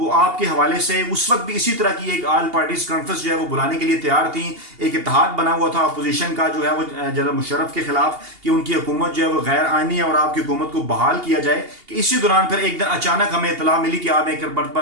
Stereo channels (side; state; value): left; late; 2.8 ms